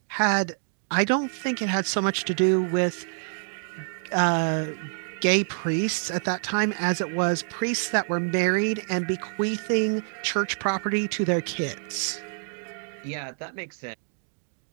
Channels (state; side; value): silent; left; digital silence